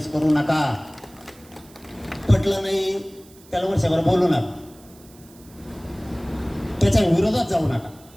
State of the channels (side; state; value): right; noise; hiss, 25 dB below the sound